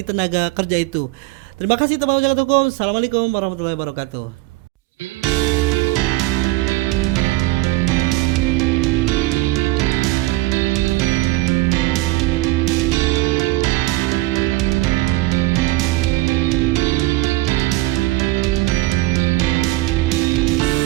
tenaga kerja itu. Terima kasih teman-teman jagat hukum. Assalamualaikum warahmatullahi wabarakatuh.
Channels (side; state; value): left; quieter; 19.4 dB